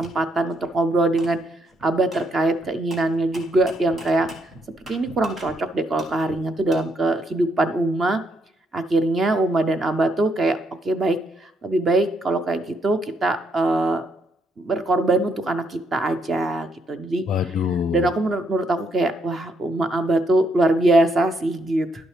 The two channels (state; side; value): normal; both; correlation 0.74